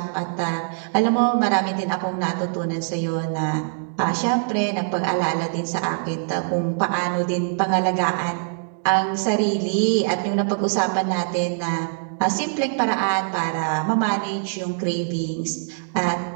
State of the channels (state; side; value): silent; left; digital silence